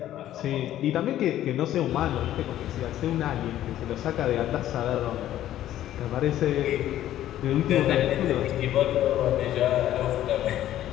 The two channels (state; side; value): quieter; right; 12.7 dB